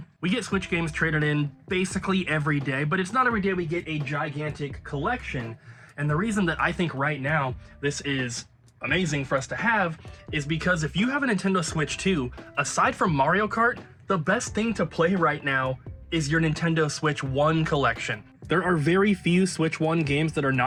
We get Switch games traded in basically every day, but it's not every day we get a gigantic collection. And the reason that I think right now this is amazing for us to have is because if you have a Nintendo Switch 2, aside from Mario Kart, the best thing to play right now is your Nintendo Switch 1 collection. There are very few Switch 1 games that are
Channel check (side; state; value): both; identical; correlation 1.00